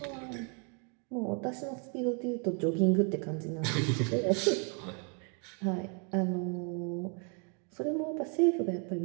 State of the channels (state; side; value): quieter; left; 37.0 dB